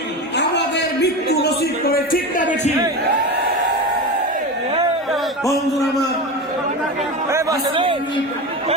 আমাদের মৃত্যু নসিব করে, ঠিক না বেশি? বন্ধুরা আমার,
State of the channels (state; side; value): normal; both; correlation 0.23